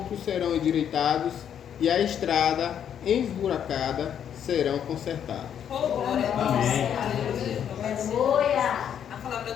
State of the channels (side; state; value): right; quieter; 9.0 dB